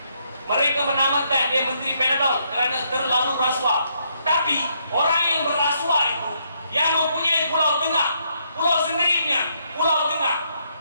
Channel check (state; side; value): inverted; both; correlation -0.74